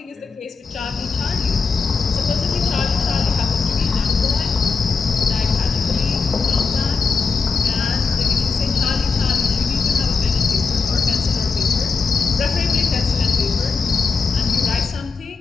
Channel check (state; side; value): quieter; right; 4.6 dB